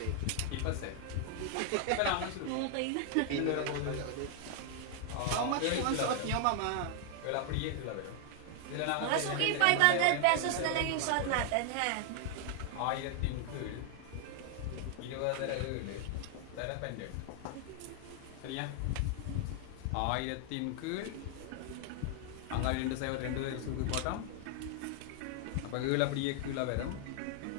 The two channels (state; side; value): different; both; correlation 0.00